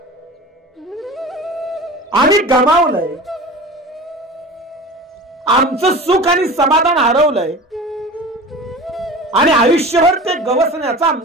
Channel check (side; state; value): both; normal; correlation 0.35